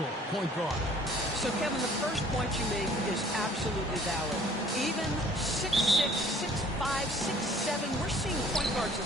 point guard. So, Kevin, the first point you make is absolutely valid. Even 6'6", 6'5", 6'7", we're seeing point guards of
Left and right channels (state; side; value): normal; both; correlation 0.54